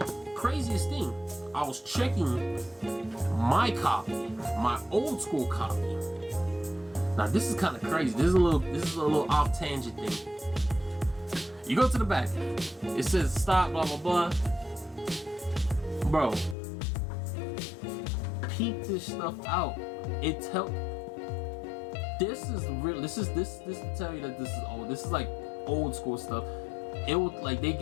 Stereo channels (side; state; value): right; drops out; at 16.6 s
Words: craziest thing, I was checking my copy, my old school copy. Now this is kind of crazy. This is a little off tangent thing. You go to the back. It says stop, blah blah blah. Bro, peep this stuff out. This is real. This to tell you that this is old. This is like old school stuff. It would, like, they